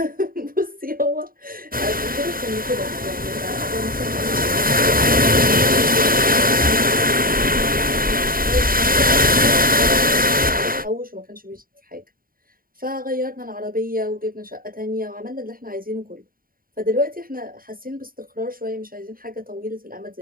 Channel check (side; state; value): left; late; 0.42 ms